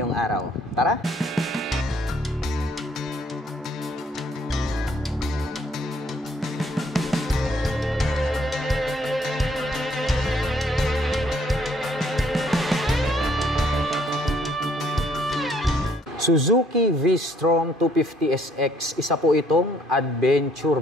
araw. Tara! Suzuki V-Strom 250SX, isa po itong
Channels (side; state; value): both; normal; correlation 0.65